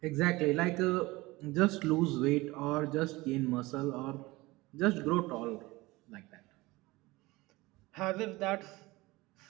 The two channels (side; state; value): left; quieter; 21.1 dB